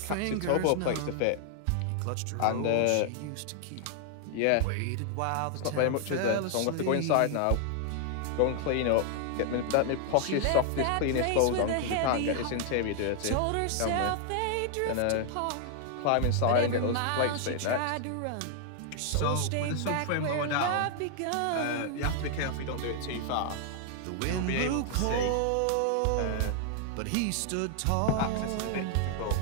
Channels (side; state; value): both; different; correlation 0.00